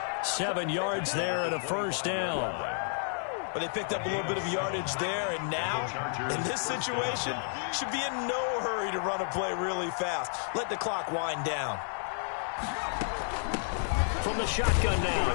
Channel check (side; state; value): right; silent; digital silence